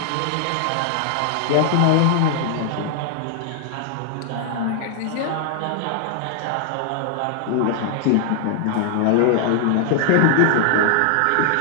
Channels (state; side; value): different; both; correlation 0.00